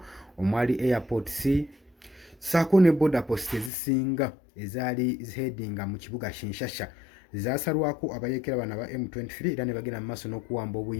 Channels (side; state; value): right; drops out; at 3.7 s